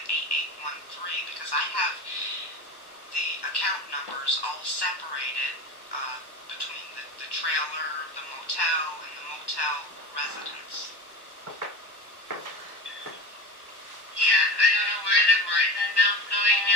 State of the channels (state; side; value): late; right; 1.1 ms